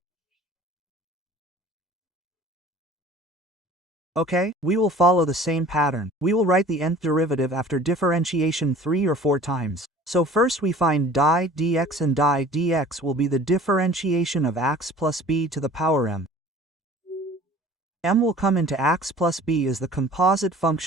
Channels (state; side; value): normal; both; correlation 0.47